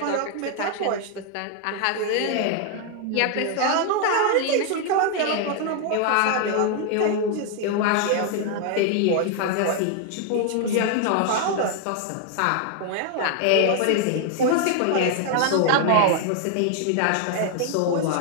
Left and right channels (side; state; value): both; different; correlation 0.00